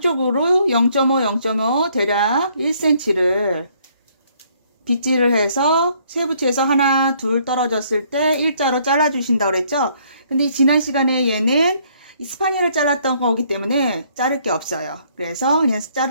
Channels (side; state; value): both; inverted; correlation -0.65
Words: 0.5, 0.5 대략 1cm를 빗질을 해서 쇠붙이에서 하나, 둘 떨어졌을 때 일자로 잘라주신다고 그랬죠. 근데 지난 시간에 얘는 스파니엘을 잘랐던 거기 때문에 자를 게 없어요. 그래서 그냥